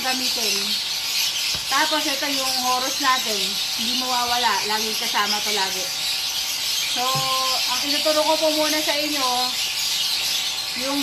gamitin. Tapos ito yung Horus natin. Hindi mawawala. Laging kasama to lagi. So, ang tinuturo ko po muna sa inyo, yung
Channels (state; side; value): identical; both; correlation 1.00